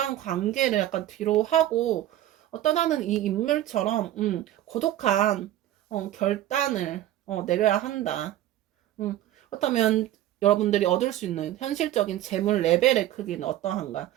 약간 뒤로 하고 떠나는 이 인물처럼 고독한 결단을 내려야 한다. 그렇다면 여러분들이 얻을 수 있는 현실적인 재물 레벨의 크기는 어떠한가?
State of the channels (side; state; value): left; quieter; 13.4 dB